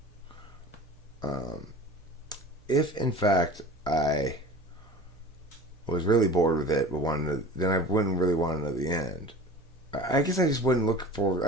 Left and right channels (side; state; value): both; normal; correlation 0.38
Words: I was really bored with it, but then I wouldn't really want to know the end. I guess I just wouldn't look forward.